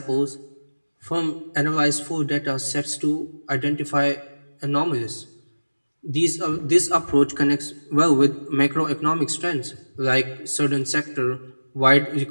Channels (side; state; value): both; inverted; correlation -1.00